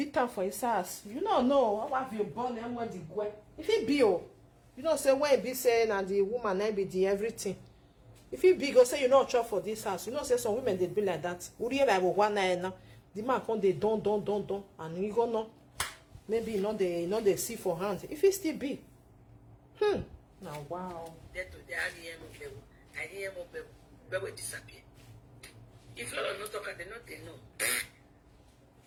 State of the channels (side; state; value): both; identical; correlation 1.00